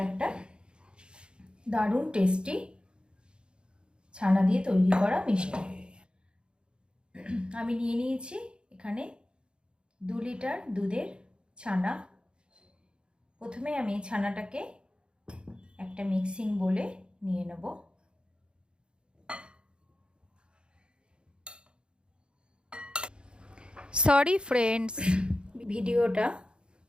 একটা দারুণ টেস্টি ছানা দিয়ে তৈরি করা মিষ্টি। আমি নিয়ে নিয়েছি এখানে 2 লিটার দুধের ছানা। প্রথমে আমি ছানাটাকে একটা মিক্সিং বোলে নিয়ে নেব। সরি ফ্রেন্ডস, ভিডিওটা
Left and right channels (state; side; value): late; left; 0.053 ms